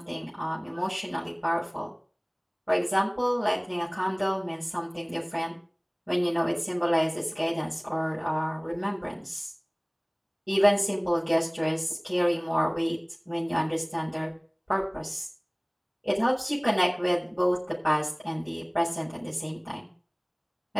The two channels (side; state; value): both; identical; correlation 1.00